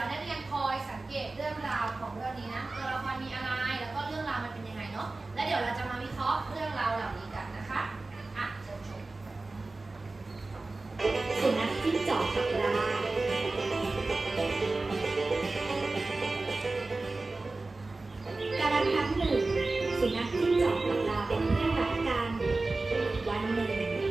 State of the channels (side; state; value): left; quieter; 3.3 dB